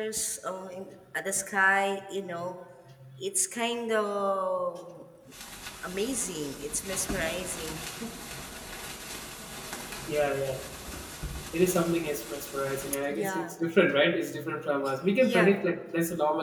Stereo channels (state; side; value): identical; both; correlation 1.00